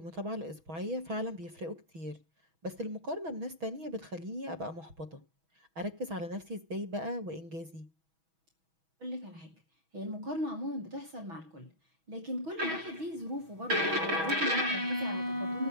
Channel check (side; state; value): left; late; 6.2 ms